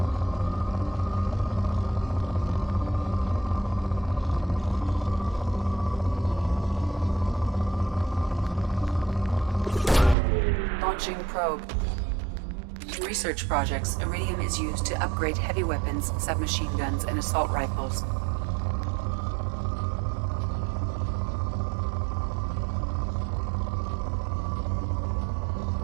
Launching probe. In research projects, iridium is used to upgrade heavy weapons, submachine guns, and assault rifles.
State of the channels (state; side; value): drops out; left; at 10.2 s